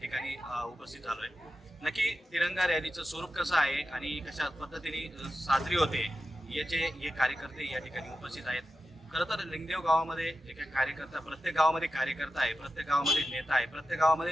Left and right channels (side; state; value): both; normal; correlation 0.91